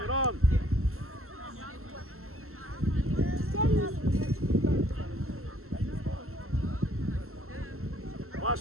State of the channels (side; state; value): left; late; 0.63 ms